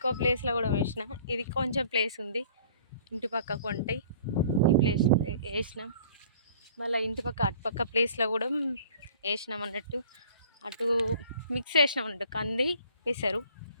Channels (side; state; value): both; inverted; correlation -0.51